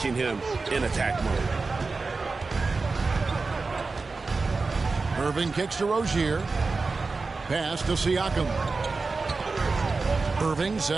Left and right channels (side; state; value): left; quieter; 4.0 dB